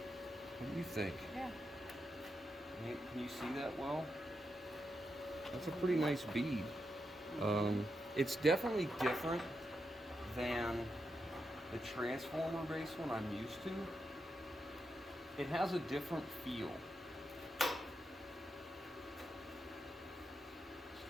What do you think? Yeah. Can you see that well? That's a pretty nice bead. It's definitely different than the transformer based one I'm used to, it has a different feel. Let's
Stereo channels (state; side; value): normal; both; correlation 0.85